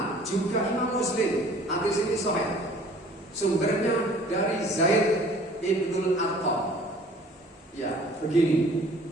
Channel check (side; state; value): both; normal; correlation 0.51